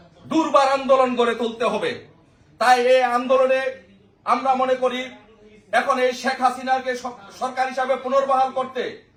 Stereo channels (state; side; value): identical; both; correlation 1.00